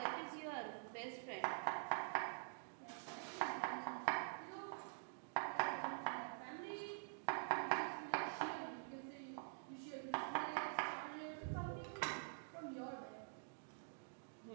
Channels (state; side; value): silent; left; digital silence